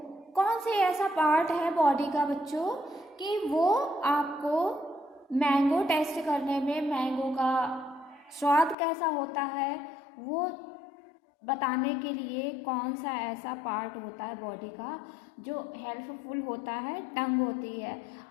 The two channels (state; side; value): drops out; right; at 8.8 s